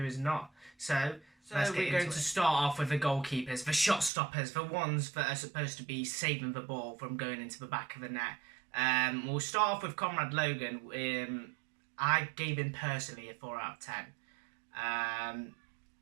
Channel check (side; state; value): left; drops out; at 4.1 s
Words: is not. So we're going to start off with the goalkeepers, the shot stoppers, the ones that are supposed to be saving the ball from going into the back of the net. We'll start off with Conrad Logan. I gave him personally a 4 out of 10.